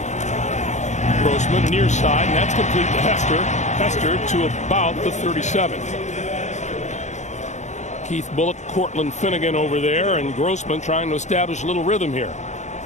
Grossman near side, and that's complete to Hester. Hester to about the 37. Keith Bullock, Cortland Finnegan over there, and Grossman trying to establish a little rhythm here.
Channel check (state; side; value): late; right; 0.34 ms